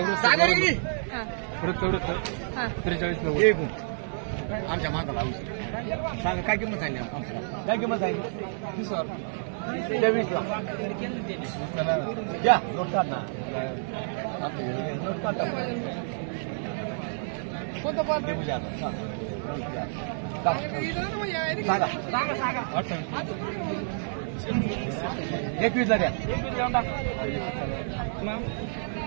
हा. 43 आमच्या माताला सांगा काय किंमत सांगली? काय किंमत सांगली? 23 ला घ्या. नोट काढ ना. नोट काढ. कोणतं पण सांगा. 21 ला द्या.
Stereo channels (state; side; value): silent; left; 59 dB below the other